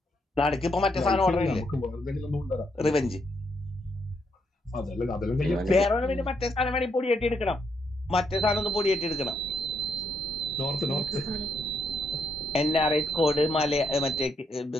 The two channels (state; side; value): normal; both; correlation 0.77